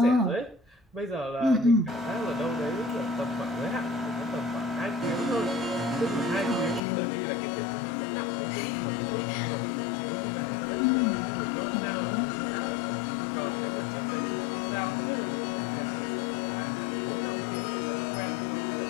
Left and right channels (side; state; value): right; drops out; at 6.8 s